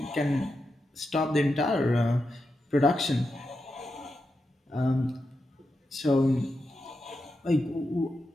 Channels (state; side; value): normal; both; correlation 0.87